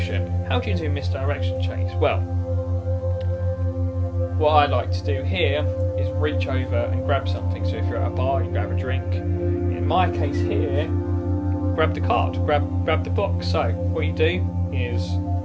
How do you do misdirection, Chase? Well, what I like to do here is reach over and grab something. So if you're at a bar, you grab a drink. In my case here, grab the card, grab the box. So what you do is,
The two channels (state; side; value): identical; both; correlation 1.00